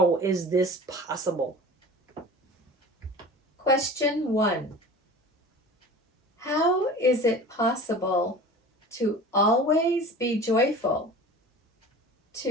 is this possible? Question 1. How is it possible to always be joyful,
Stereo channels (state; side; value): normal; both; correlation 0.39